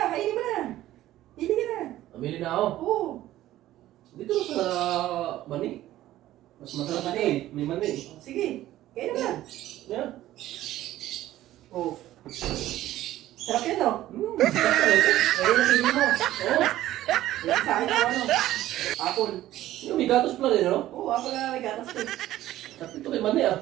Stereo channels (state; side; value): quieter; left; 14.4 dB